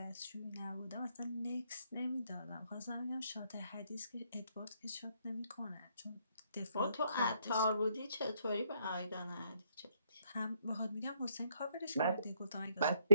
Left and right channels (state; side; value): inverted; both; correlation -0.70